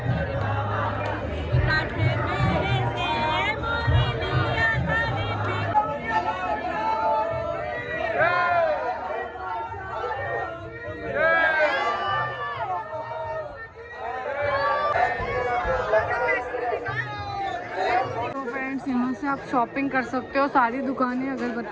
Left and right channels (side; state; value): both; identical; correlation 1.00